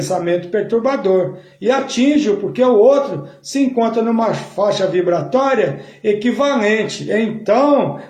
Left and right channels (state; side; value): identical; both; correlation 1.00